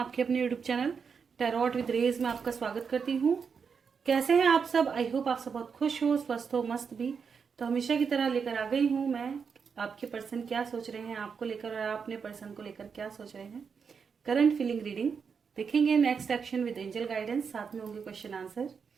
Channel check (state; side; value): quieter; left; 6.1 dB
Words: अपने यूट्यूब चैनल टैरोट विद रेज में आपका स्वागत करती हूँ। कैसे हैं आप सब? आई होप आप सब बहुत खुश हो, स्वस्थ हो, मस्त भी। तो हमेशा की तरह लेकर आ गई हूँ मैं आपके पर्सन क्या सोच रहे हैं आपको लेकर और आप अपने पर्सन को लेकर क्या सोच रहे हैं। करंट फीलिंग रीडिंग देखेंगे, next action with angel guidance, साथ में होंगे क्वेश्चन आंसर।